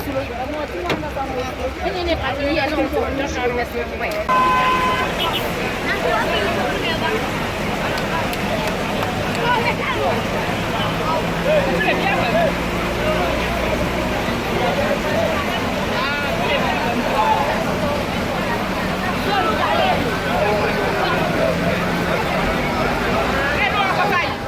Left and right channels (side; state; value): both; identical; correlation 1.00